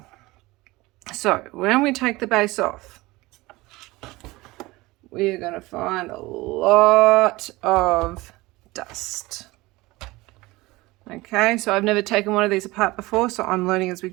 so when we take the base off, we're going to find a lot of dust. Okay, so I've never taken one of these apart before, so I'm learning as we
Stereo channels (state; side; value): quieter; left; 20.8 dB